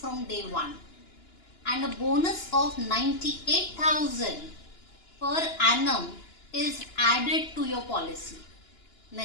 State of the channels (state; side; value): late; right; 2.9 ms